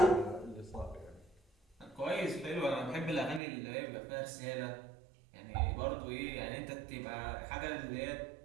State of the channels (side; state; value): left; drops out; at 3.4 s